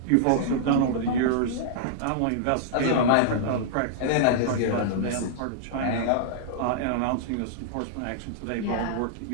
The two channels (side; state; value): both; different; correlation -0.02